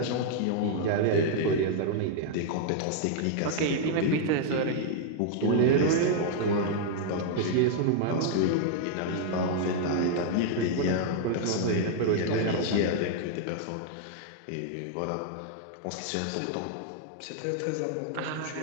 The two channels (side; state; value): both; different; correlation -0.01